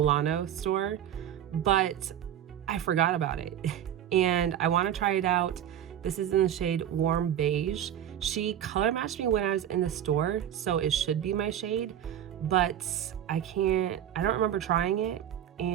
store, but I forgot about it and I want to try it out. This is in the shade Warm Beige. She color matched me when I was in the store, so it should be my shade, but I don't remember trying it.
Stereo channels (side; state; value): left; quieter; 10.4 dB